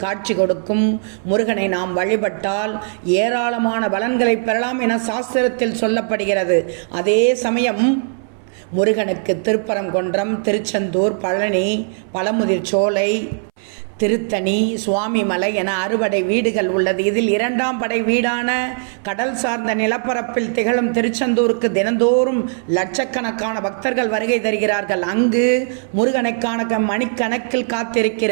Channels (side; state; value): left; silent; 63 dB below the other